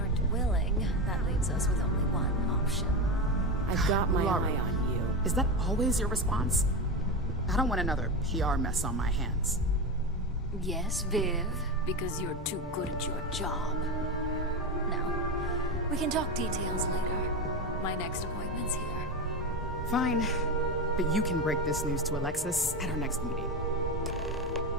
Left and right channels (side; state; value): both; normal; correlation 0.18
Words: willing, that leaves us with only one option. I've got my eye on you. Is that always your response? I don't want another PR mess on my hands. Yes, Viv, because you're too good at your job. Now, we can talk details later. My next appointment's here. Fine, but you can break this news to Alexis at our next meeting.